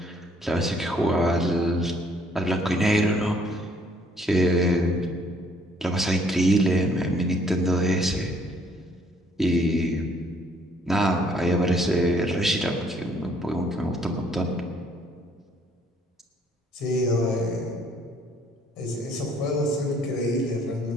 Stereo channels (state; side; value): normal; both; correlation 0.63